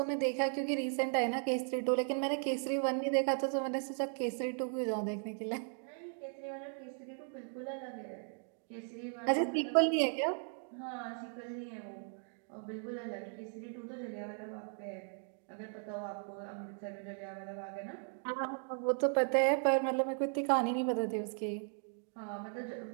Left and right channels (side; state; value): left; silent; 53 dB below the other